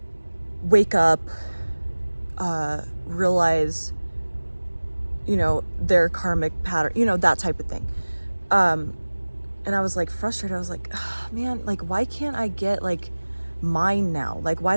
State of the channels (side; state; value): both; inverted; correlation -1.00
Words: wake up, realize, their karmic pattern, that type of thing. And I was like frustrated. I was like, oh, man, like, why can't I get like mine now? Like,